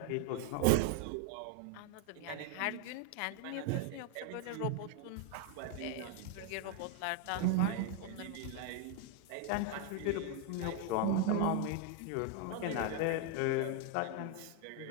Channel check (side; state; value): both; different; correlation 0.00